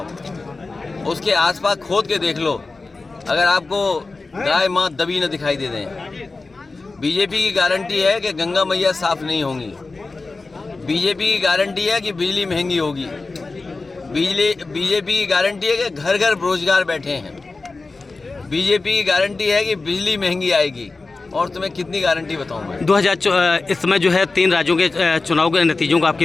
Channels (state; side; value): quieter; right; 3.7 dB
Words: उसके आसपास खोद के देख लो, अगर आपको गाय माँ दबी न दिखाई दे दें। बीजेपी की गारंटी है कि गंगा मैया साफ नहीं होंगी। बीजेपी की गारंटी है कि बिजली महंगी होगी। बीजेपी की गारंटी है कि घर घर बेरोजगार बैठे हैं। बीजेपी की गारंटी है कि बिजली महंगी आएगी। और तुम्हें कितनी गारंटी बताऊं मैं? 2000 इस समय जो है 3 राज्यों के चुनाव के नतीजों को आप